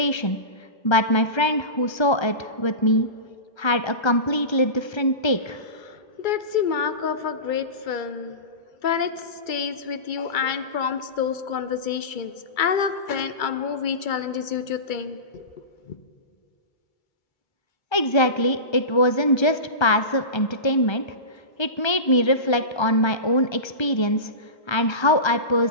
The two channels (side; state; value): right; late; 1.3 ms